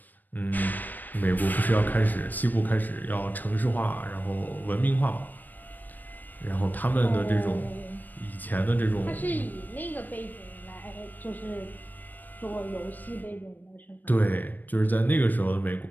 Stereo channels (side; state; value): right; late; 0.088 ms